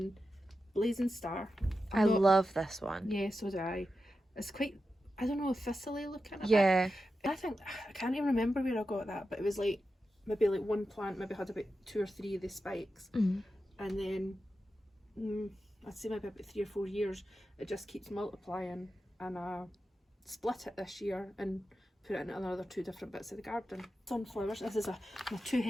Blazing Star. I love this one. Yeah, so do I. It's quite, I don't know, thistly looking. Yeah. I think, I can't even remember where I got that, but it was like maybe like one plant maybe had about 2 or 3 of the spikes, Mm. and then I'd say maybe about 3 or 4 years it just keeps multiplying, and I split it this year and put it into another 2 different bits of the garden. Sunflowers. This is a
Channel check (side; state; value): both; normal; correlation 0.90